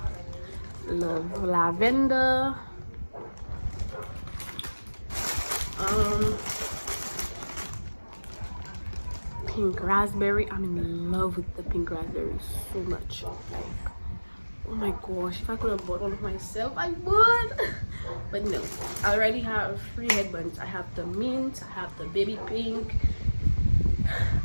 lavender. Pink raspberry. I'm in love with the pink raspberry so much. Like, oh my gosh, if I could have bought one of myself, I would. But no, I already have 3 headbands. I have the mint, I have the baby pink,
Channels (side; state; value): both; inverted; correlation -1.00